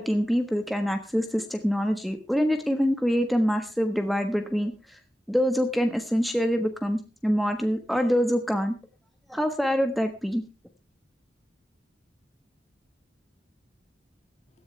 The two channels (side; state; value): both; normal; correlation 0.93